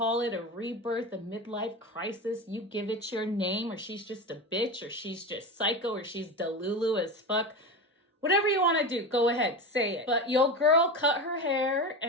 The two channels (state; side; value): normal; both; correlation 0.24